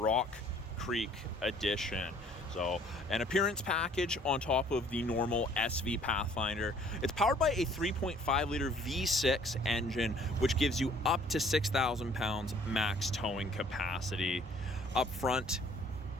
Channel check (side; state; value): both; normal; correlation 0.57